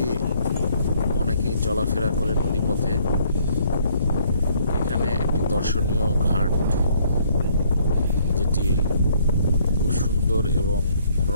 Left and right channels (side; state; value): both; inverted; correlation -0.64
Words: অনেকেই চলাফেরা করে নদীপথে। এখানে একটি দর্শনীয় ঘাট, যেটি খুব সুন্দর এবং